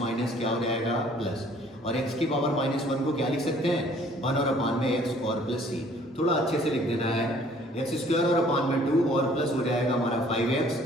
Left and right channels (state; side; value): normal; both; correlation 0.57